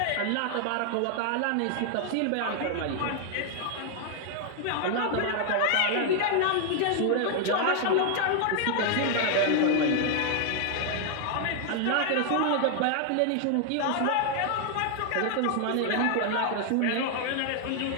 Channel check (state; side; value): different; both; correlation 0.00